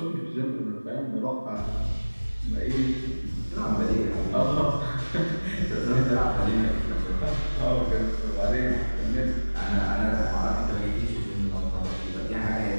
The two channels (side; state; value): both; inverted; correlation -1.00